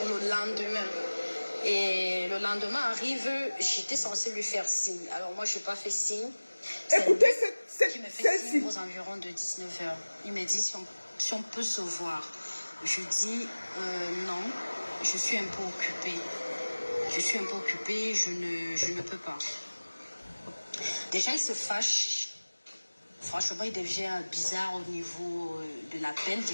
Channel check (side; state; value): both; inverted; correlation -1.00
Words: le lendemain. Et le lendemain arrive, j'étais censée lui faire signe. Alors moi, je n'ai pas fait signe. Écoutez qui me fait celle-ci. signe aux environs de 19h. Il me dit si on peut se voir. Je dis non, je suis un peu occupée. Je suis un peu occupée, je ne peux pas. Déjà, il se fâche. Franchement, il devient bizarre au niveau de l'appel.